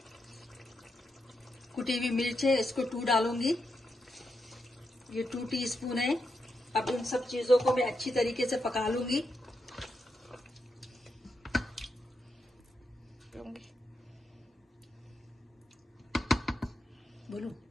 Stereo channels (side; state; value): both; normal; correlation 0.84